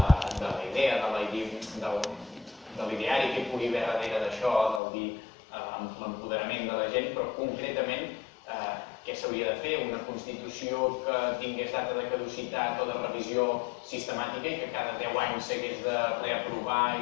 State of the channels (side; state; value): right; drops out; at 4.8 s